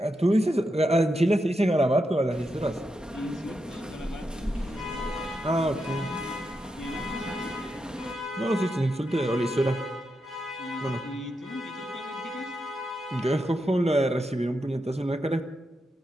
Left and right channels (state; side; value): normal; both; correlation 0.85